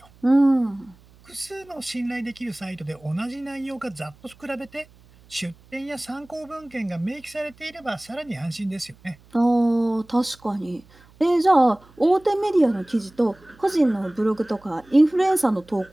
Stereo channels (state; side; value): noise; right; hum, 27 dB below the sound